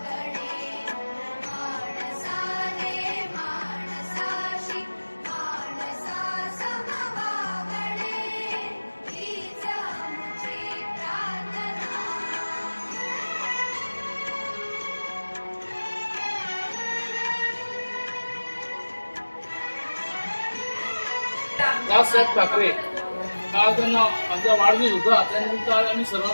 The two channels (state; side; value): inverted; both; correlation -1.00